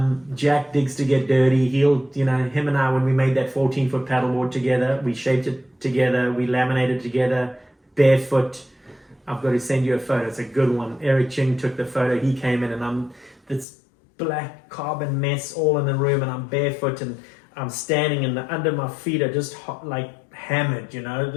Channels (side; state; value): right; drops out; at 13.7 s